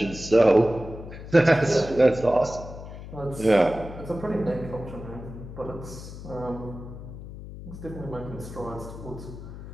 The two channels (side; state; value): left; noise; hum, 12 dB below the sound